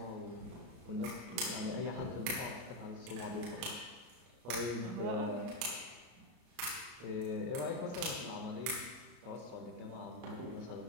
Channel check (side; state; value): left; late; 33 ms